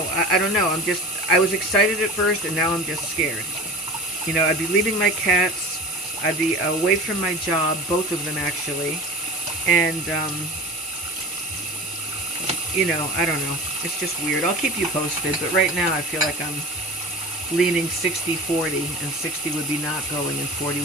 I don't know. I was excited at first, and now I'm just scared. You know, I'd be leaving my cats. I'd be away from my job, both of them actually, and, you know, I don't know. It's just weird. I'll keep you posted, but right now I feel like I'm leaning 60-40, and 60 would be not going, and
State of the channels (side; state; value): both; normal; correlation 0.34